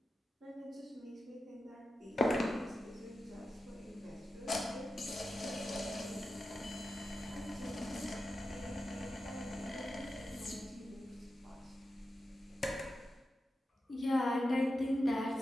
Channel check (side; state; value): both; normal; correlation 0.91